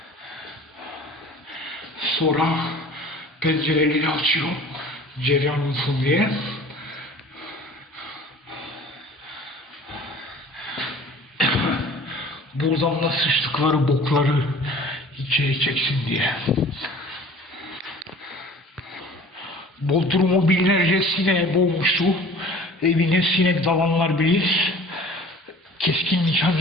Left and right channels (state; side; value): normal; both; correlation 0.46